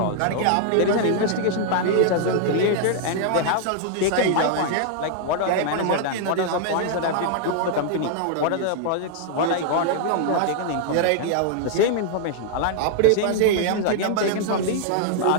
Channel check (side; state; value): both; different; correlation -0.01